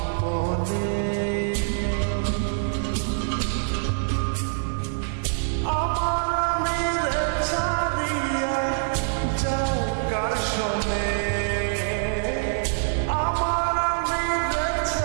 আমার আমিরে ছাড়িয়া যাও কার শোনে, আমার আমিরে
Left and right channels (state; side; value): silent; left; 62 dB below the other